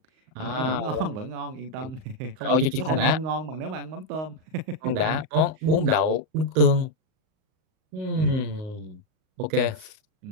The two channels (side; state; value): left; late; 38 ms